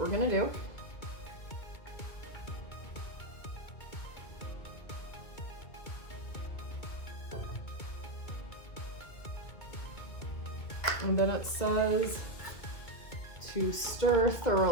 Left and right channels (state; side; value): late; right; 2.5 ms